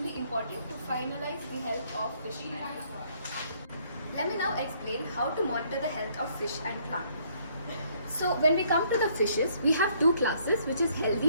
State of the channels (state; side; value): inverted; both; correlation -0.66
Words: important to finalize the health of fish and plant. Let me now explain how to monitor the health of fish and plant. So when we come to the fishes, we have two classes, which is